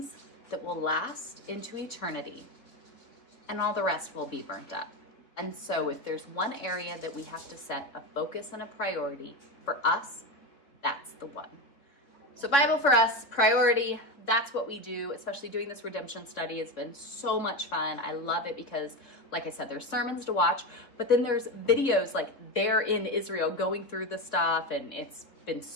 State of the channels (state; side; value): late; right; 3.6 ms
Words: that will last into eternity, and all the rest will be burnt up. And so if there's one area that we have to set a focus and a priority for us, that's the one. So Bible for us, priority, that's what we do, especially doing this redemption study. It's been so much fun. I love it because, like I said, there's sermons to watch, but then there's videos like they're in Israel going through the stuff, and it's been